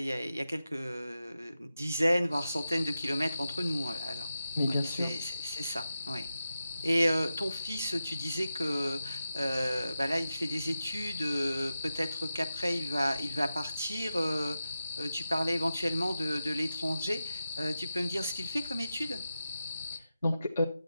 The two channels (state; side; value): inverted; both; correlation -0.91